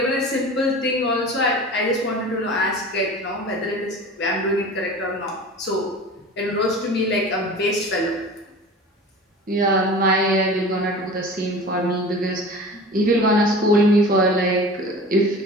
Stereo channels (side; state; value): both; normal; correlation 0.38